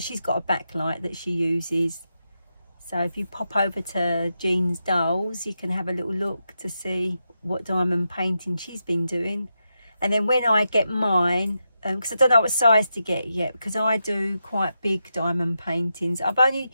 got a backlight that she uses. So if you pop over to Jean's Dolls, you can have a little look to see what diamond painting she's been doing. And then when I get mine, because I don't know what size to get yet, because I do quite big diamond paintings. I've only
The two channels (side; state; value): both; inverted; correlation -0.86